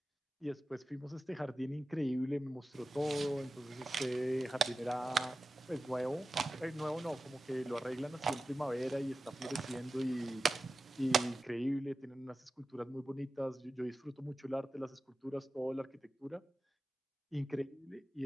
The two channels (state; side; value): normal; both; correlation 0.94